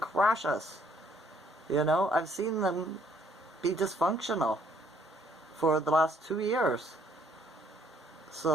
crash us. You know, I've seen them be dysfunctional for the last 2 years.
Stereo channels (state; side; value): normal; both; correlation 0.65